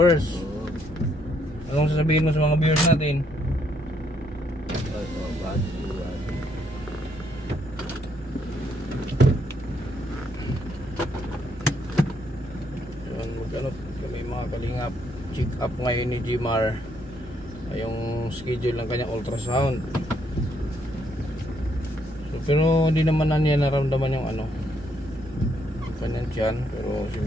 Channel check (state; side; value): normal; both; correlation 0.73